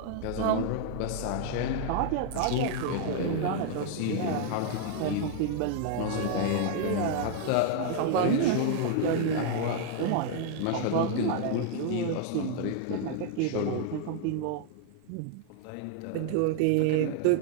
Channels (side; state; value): both; different; correlation 0.00